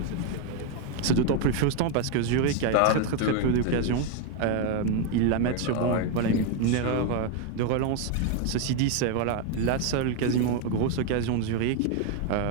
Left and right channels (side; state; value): both; different; correlation 0.01